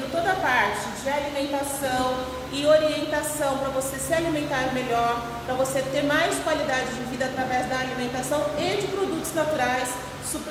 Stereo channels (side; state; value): both; identical; correlation 1.00